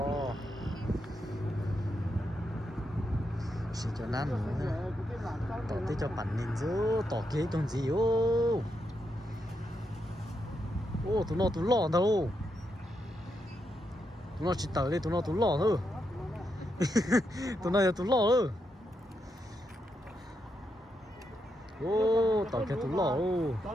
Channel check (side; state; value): both; normal; correlation 0.83